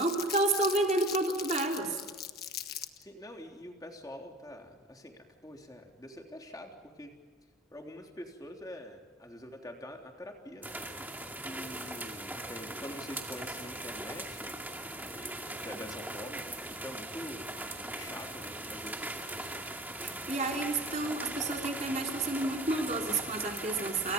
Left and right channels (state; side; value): normal; both; correlation 0.43